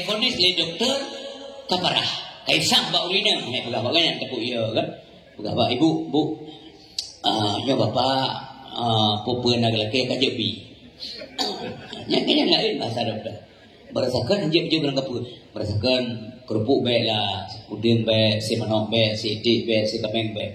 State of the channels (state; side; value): identical; both; correlation 1.00